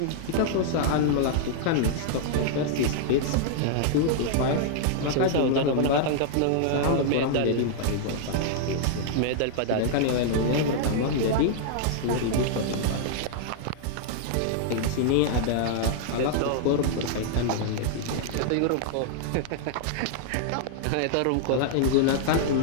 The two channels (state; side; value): different; both; correlation -0.01